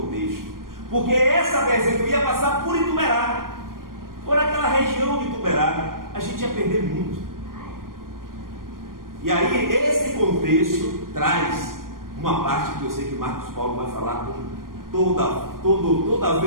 contexto, porque essa BR-101 ia passar por Ituberá, por aquela região de Ituberá. A gente ia perder muito. E aí esse contexto traz uma parte que eu sei que Marcos Paulo vai falar com toda a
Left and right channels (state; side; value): late; left; 0.91 ms